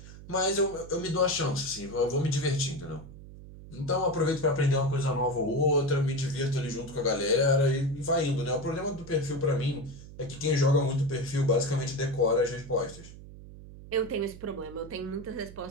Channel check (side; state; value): right; noise; hum, 16 dB below the sound